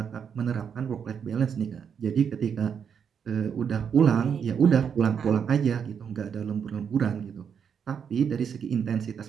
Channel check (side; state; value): left; quieter; 7.3 dB